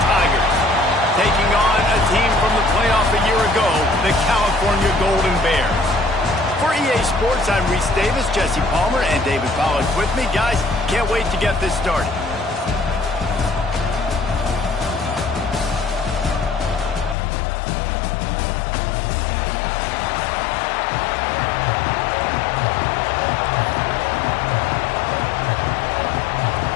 Tigers, taking on a team from the playoff a year ago, the California Golden Bears. For EA Sports, I'm Reese Davis, Jesse Palmer, and David Pollack with me. Guys, can't wait to get this started.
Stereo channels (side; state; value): right; drops out; at 17.2 s